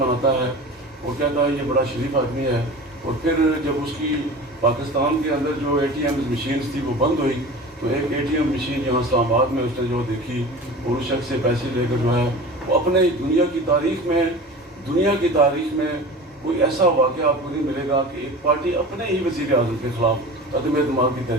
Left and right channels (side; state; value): both; normal; correlation 0.36